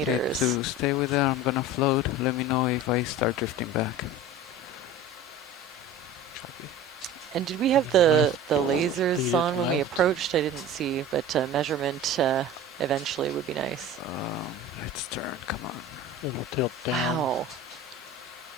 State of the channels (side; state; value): both; normal; correlation 0.36